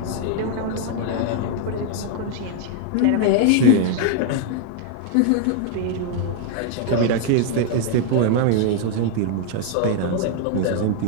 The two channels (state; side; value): different; both; correlation 0.00